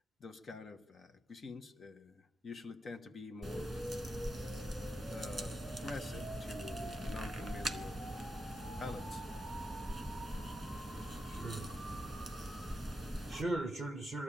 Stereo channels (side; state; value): both; normal; correlation 0.86